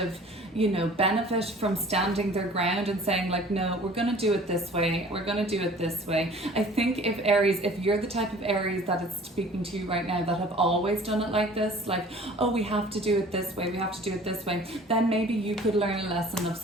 you know, benefit from standing their ground and saying like, no, we're going to do it this way, we're going to do it this way. I think if Aries, if you're the type of Aries that is speaking to you right now that have always done it like this, like, oh, we have to do it this way, we have to do it this way, then maybe you could learn a lesson of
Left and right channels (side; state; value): both; normal; correlation 0.48